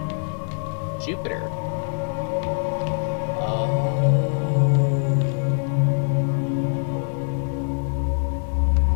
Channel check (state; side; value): silent; right; digital silence